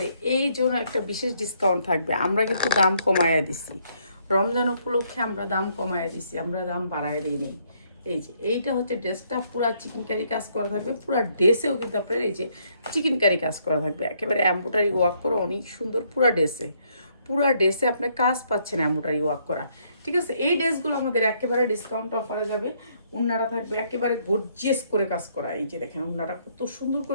এই জন্য একটা বিশেষ ডিসকাউন্ট থাকবে। আমরা কিন্তু দাম কমায়া দিছি, রমজান উপলক্ষে আমরা দাম কমায়া দিছি, আমরা দাম বাড়ায় দিই নেই। এই যে এইটা হচ্ছে ড্রেসটা, পুরা চিকেন কারি কাজ করা থাকবে। পুরা ড্রেসেও কিন্তু আপনার এই যে চিকেন কারি কাজ করা থাকবে, একেবারে এমব্রয়ডারি ওয়ার্ক করা, অনেক সুন্দর। পুরা ড্রেসে আপনার কাজ পাচ্ছেন এমব্রয়ডারি ওয়ার্ক করা। ঠিক আছে, এই ড্রেসগুলো আমাদের একেবারে ডিসকাউন্ট অফারে যাবে। উন্নাটা থাকবে একেবারে গর্জিয়াস করে কাজ করা। এই যে দেখেন উন্নাটা কত সুন্দর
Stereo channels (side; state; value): both; inverted; correlation -0.70